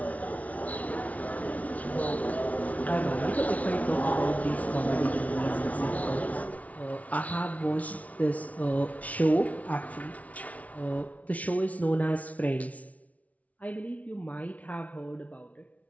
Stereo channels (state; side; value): late; right; 0.069 ms